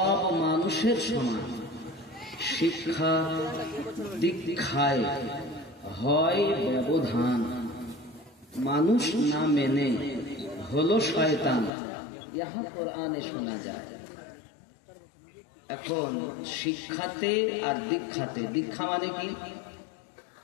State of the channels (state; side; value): drops out; right; at 11.7 s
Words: মানুষের সমান, শিক্ষা দীক্ষায় হয় ব্যবধান, মানুষ না মেনে হলো শয়তান, ইহা কোরআনে শোনা যায়। এখন শিক্ষাতে আর দীক্ষাতে, দীক্ষা মানে কি